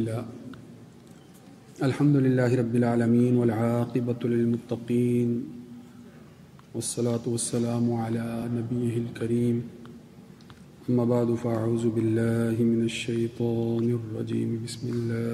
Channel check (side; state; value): both; identical; correlation 1.00